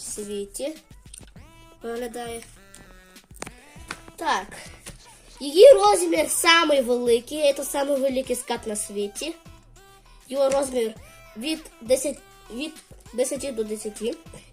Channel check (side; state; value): both; identical; correlation 1.00